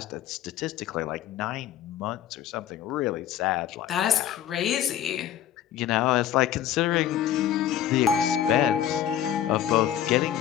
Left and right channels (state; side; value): quieter; right; 10.7 dB